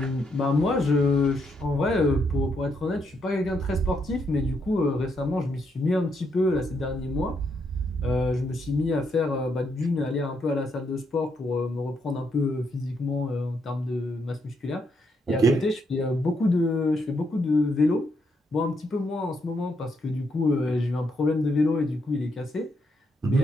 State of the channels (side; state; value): both; normal; correlation 0.77